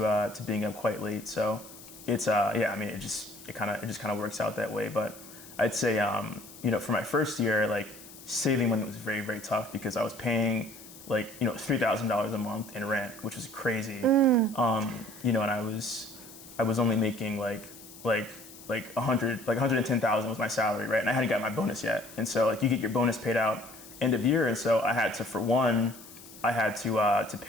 being up quite late, so it's I mean, it just kind of works out that way. But I'd say for my first year, like saving money was very, very tough because I was paying like $3,000 a month in rent, which was crazy. And I was only making like 110,000 was my salary, right? And I hadn't got my bonus yet. And so like you get your bonus paid out end of year, and so I had to, for one, I had to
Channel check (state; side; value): noise; left; hiss, 18 dB below the sound